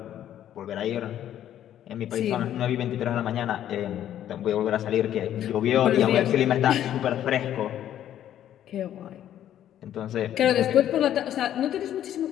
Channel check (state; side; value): quieter; right; 11.2 dB